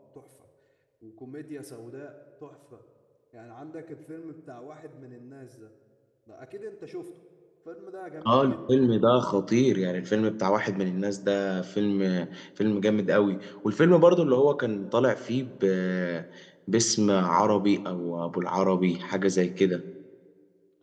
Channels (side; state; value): both; identical; correlation 1.00